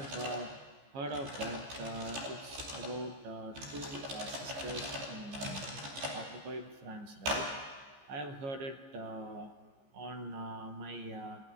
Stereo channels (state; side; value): late; left; 15 ms